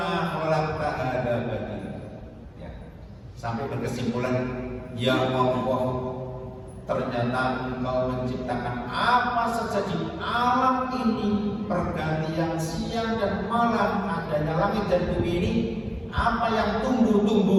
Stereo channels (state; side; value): identical; both; correlation 1.00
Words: khalaqta hadza batila. Ya. Sampai berkesimpulan, ya Allah, ternyata Engkau menciptakan apa saja di alam ini, pergantian siang dan malam, adanya langit dan bumi ini, apa yang